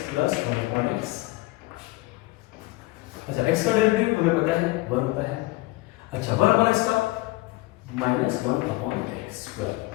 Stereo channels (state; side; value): quieter; right; 20.7 dB